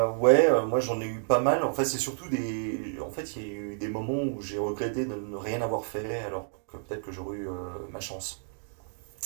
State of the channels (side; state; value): left; silent; digital silence